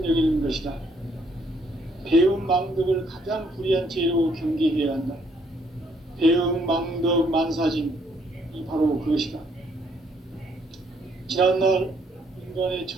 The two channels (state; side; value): normal; both; correlation 0.68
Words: 것이다. 배움 망덕을 가장 불의한 죄로 경계해야 한다. 배움 망덕 만사짐이 바로 그것이다. 지난날 인간의